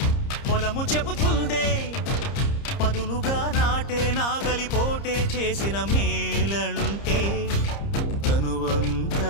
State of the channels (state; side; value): late; right; 30 ms